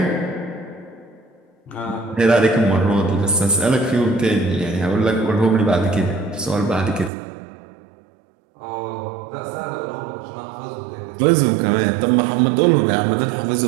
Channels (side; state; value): left; drops out; at 7.1 s